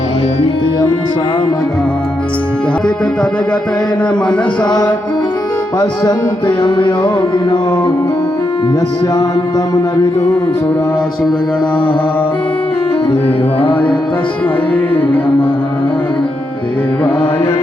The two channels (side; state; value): both; normal; correlation 0.83